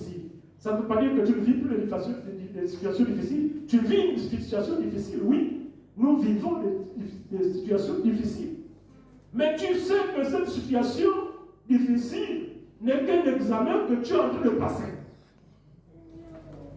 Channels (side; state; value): both; identical; correlation 1.00